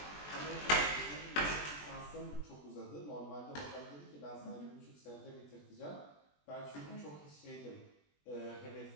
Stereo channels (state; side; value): late; right; 20 ms